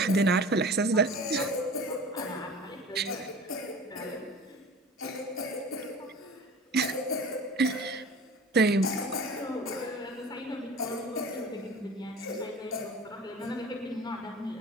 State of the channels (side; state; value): both; normal; correlation 0.40